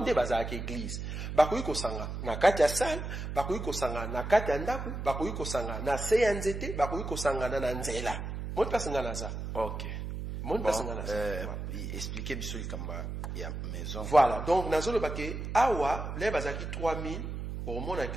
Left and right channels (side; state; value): right; noise; hum, 5 dB below the sound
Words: bazaka église bakoyi kosanga na kati ya sal bakoyi kosanga na kati ya ndaku bakoyi kosanga na se ya nzete bakoyi kosanga na nzela Mon place nganaza. Ok. Mon place nganaza. Expliquez biso likamba ya maison. Voilà. Donc nazo le baké awa les bazaki 3000 au monde